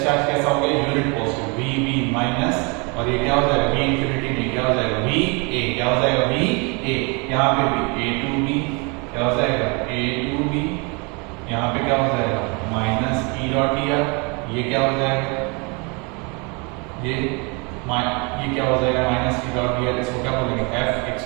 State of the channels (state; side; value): quieter; left; 31.1 dB